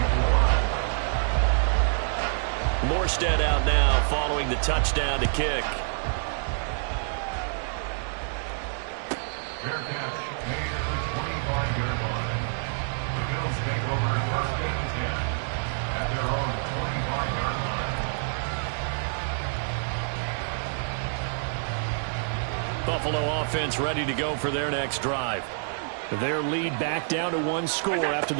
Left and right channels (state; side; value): silent; left; digital silence